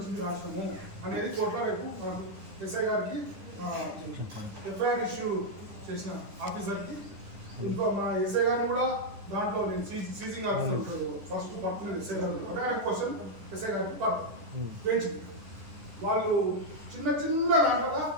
రాష్ట్రము అనేది కోర్టులో రేపు ఎస్ఐ గారికి ఎఫ్ఐఆర్ ఇష్యూ చేసిన ఆఫీసర్కి మా ఎస్ఐ గారిని కూడా దాంట్లో నేను సీజింగ్ ఆఫీసర్ ఫస్ట్ పడుతున్నది ఎస్ఐ గారు. అదే క్వశ్చన్ ఎస్ఐ గారికి పెంచింది. వాళ్ళు చిన్న చిన్న దాంట్లో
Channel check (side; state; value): left; late; 10 ms